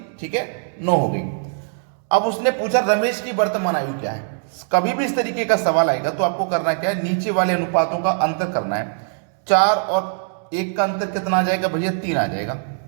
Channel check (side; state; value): left; silent; digital silence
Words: ठीक है, 9 हो गई। अब उसने पूछा रमेश की वर्तमान आयु क्या है। कभी भी इस तरीके का सवाल आएगा तो आपको करना क्या है? नीचे वाले अनुपातों का अंतर करना है। 4 और 1 का अंतर कितना आ जाएगा भैया? 3 आ जाएगा।